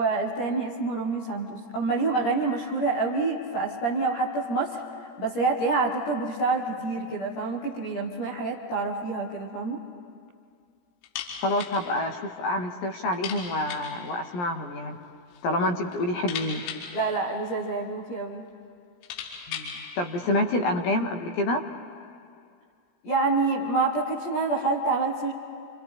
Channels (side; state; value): right; late; 17 ms